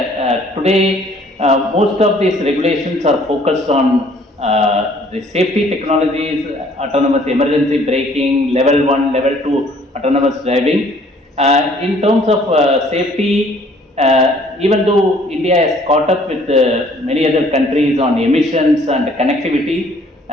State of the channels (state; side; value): normal; both; correlation 0.58